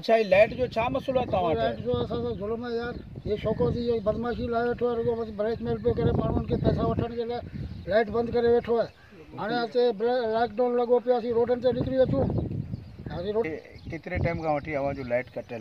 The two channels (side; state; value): both; identical; correlation 1.00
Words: ये लाइट जो छा मसलो आहे तव्हां लाइट जो असां ज़ुल्म आहे यार। ये शौक़त जी बदमाशी लाइ वेठो आहे, रुगो ब्लैकमेल पियो करे माण्हुनि खे पैसा वठण जे लाइ लाइट बंदि करे वेठो आहे। हाणे हिते लॉकडाउन लॻो पियो, असीं रोडनि ते निकिरी अचूं। केतिरे टाइम खां वठी अवां जो लाइट